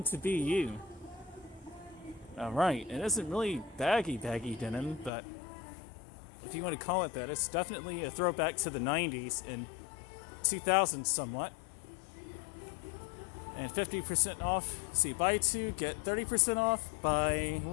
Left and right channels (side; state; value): right; drops out; at 5.1 s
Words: to be you. Alright, it isn't really baggy denim, but if you want to call it that, it's definitely a throwback to the 90s and 2000s somewhat. And 50% off. See, buy two, get 30% off. Buy